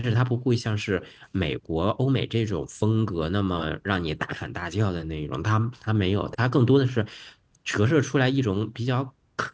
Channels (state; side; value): identical; both; correlation 1.00